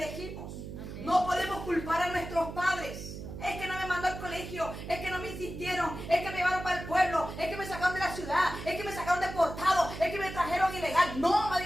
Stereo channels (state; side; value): noise; right; hum, 9 dB below the sound